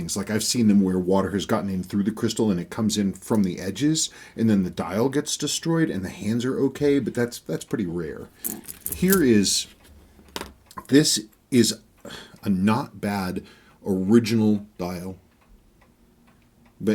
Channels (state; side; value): identical; both; correlation 1.00